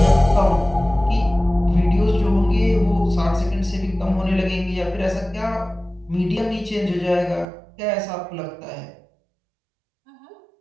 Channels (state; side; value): drops out; left; at 7.5 s